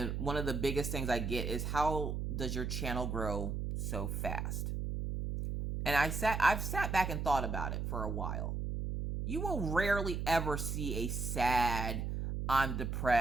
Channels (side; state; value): right; noise; hum, 2 dB below the sound